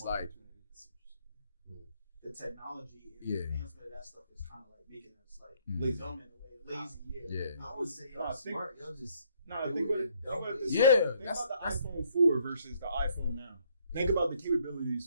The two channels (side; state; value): both; inverted; correlation -0.67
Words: like the technology and the advancement of that stuff is kind of like making us like dumb in a way, lazy. Yeah. I would say y'all smart. Y'all just think about this. Yeah. Think about the iPhone 4 versus the iPhone now. Think about the